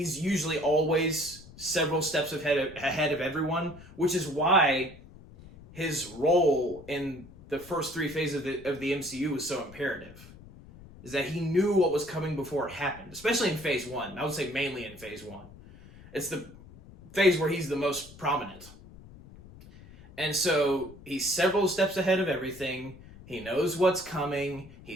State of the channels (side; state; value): left; noise; rumble, 19 dB below the sound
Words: usually always several steps ahead of everyone, which is why his role in the first three phases of the MCU was so imperative. Is that he knew what was coming before it happened, especially in phase 1. I would say mainly in phase 1. It's the phase where he's the most prominent. And so he's several steps ahead of everything. He knows what's coming.